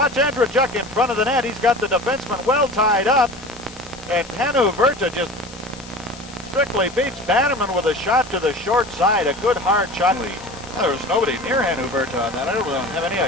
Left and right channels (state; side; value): noise; left; hiss, 18 dB below the sound